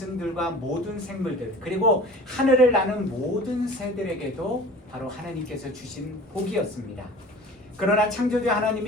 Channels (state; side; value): normal; both; correlation 0.42